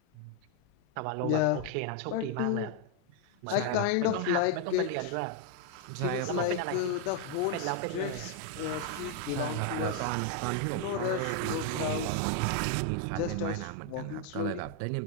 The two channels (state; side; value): different; both; correlation 0.01